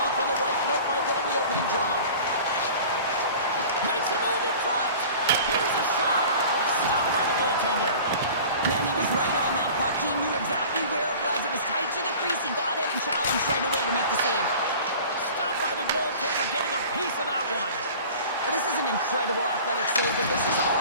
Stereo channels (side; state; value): both; inverted; correlation -0.42